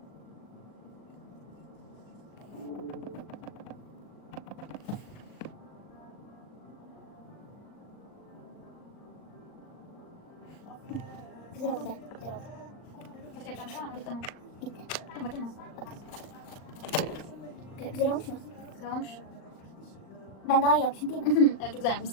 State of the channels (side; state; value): right; late; 39 ms